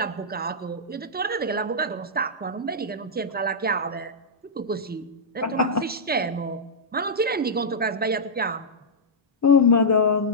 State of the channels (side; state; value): both; normal; correlation -0.10